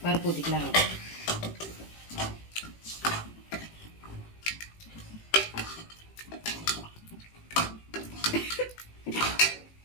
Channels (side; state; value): right; late; 18 ms